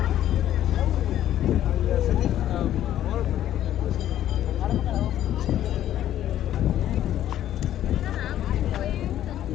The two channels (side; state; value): right; quieter; 11.9 dB